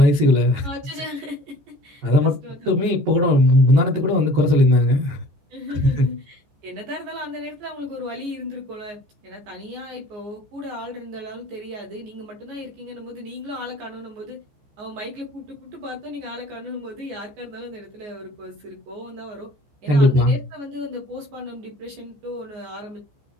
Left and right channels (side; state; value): left; late; 14 ms